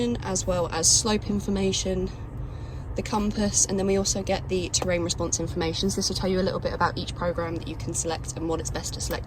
as well as slope information, the compass, and then we also get the terrain response information. So this will tell you a little bit about each program that you can select and what it's best to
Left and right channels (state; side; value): identical; both; correlation 1.00